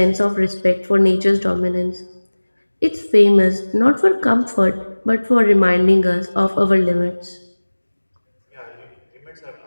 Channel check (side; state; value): both; inverted; correlation -1.00